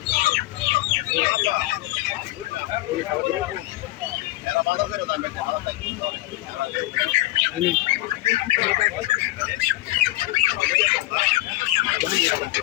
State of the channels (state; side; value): quieter; right; 17.9 dB